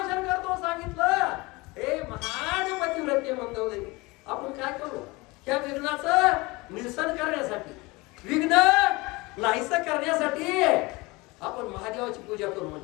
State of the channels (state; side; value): quieter; right; 23.6 dB